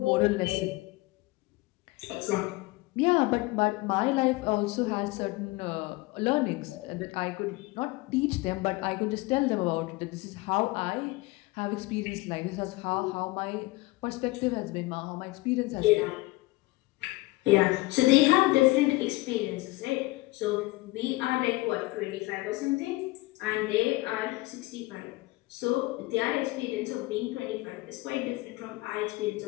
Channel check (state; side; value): quieter; right; 21.4 dB